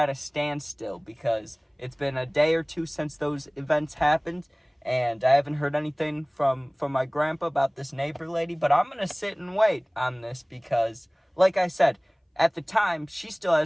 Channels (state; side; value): identical; both; correlation 1.00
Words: standstill because it's been a day or two since those events happened, and I haven't heard anything from my grandpa about this neighbor lady. But I'm gonna sit and wait on this because, like I said, at the time she still